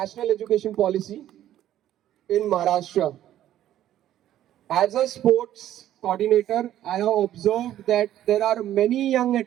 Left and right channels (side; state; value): left; quieter; 12.3 dB